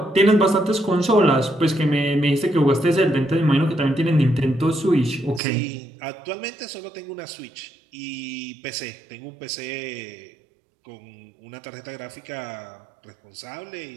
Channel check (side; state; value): left; drops out; at 5.4 s